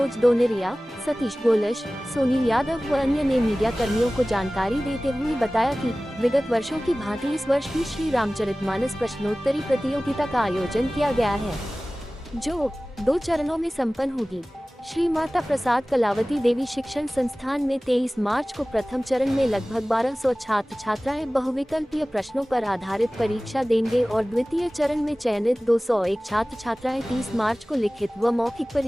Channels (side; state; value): both; normal; correlation 0.98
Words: दोनेरिया, सतीश गोलश, सोनील यादव व अन्य ने मीडिया कर्मियों को जानकारी देते हुए बताया कि विगत वर्षों की भांति इस वर्ष भी श्री रामचरितमानस प्रश्नोत्तरी प्रतियोगिता का आयोजन किया गया है, जो 2 चरणों में संपन्न होगी। श्री माता प्रसाद कलावती देवी शिक्षण संस्थान में 23 मार्च को प्रथम चरण में लगभग 1200 छात्र छात्राएं बहुविकल्पीय प्रश्नों पर आधारित परीक्षा देंगे और द्वितीय चरण में चयनित 201 छात्र छात्राएं 30 मार्च को लिखित व मौखिक